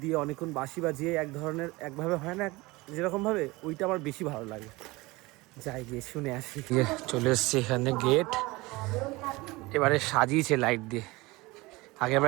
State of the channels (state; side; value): quieter; left; 22.2 dB